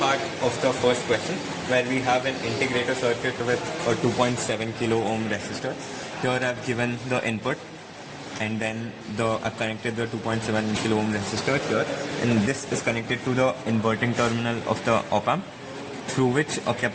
of the first question where we have an integrator circuit with a 2.7 kilo ohm resistor. Here I've given the input and then I've connected the 2.7 kilo ohm resistor here, and this is connected to the inverting terminal of the op-amp, through which a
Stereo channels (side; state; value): both; identical; correlation 1.00